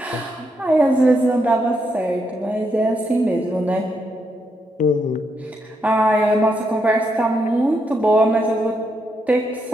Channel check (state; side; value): normal; both; correlation 0.80